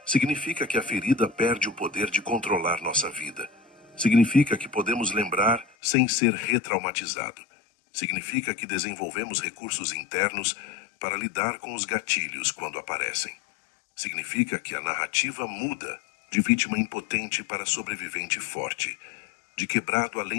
Significa que a ferida perde o poder de controlar nossa vida. Significa que podemos lembrar sem ser retraumatizado. Significa que desenvolvemos recursos internos para lidar com os gatilhos quando aparecem. Significa que a narrativa muda de vítima impotente para sobrevivente forte, de quebrado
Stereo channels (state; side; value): drops out; right; at 5.7 s